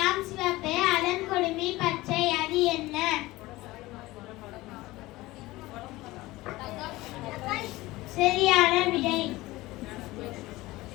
சிவப்பே அலங்கொடுமி பச்சை, அது என்ன? சரியான விடை.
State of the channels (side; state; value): right; quieter; 19.1 dB